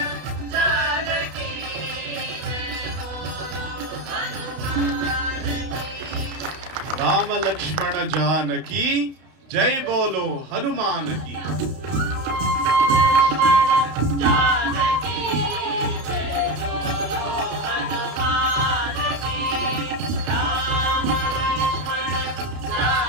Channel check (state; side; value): late; left; 32 ms